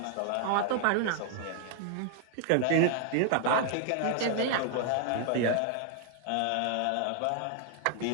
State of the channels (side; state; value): both; different; correlation 0.00